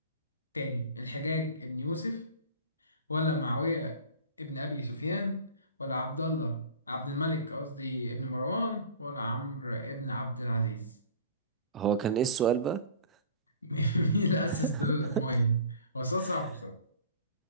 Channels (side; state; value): both; inverted; correlation -0.43